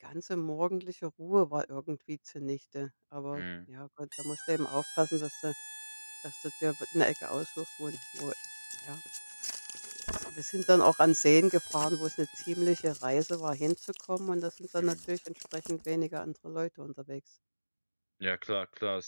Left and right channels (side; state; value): both; inverted; correlation -1.00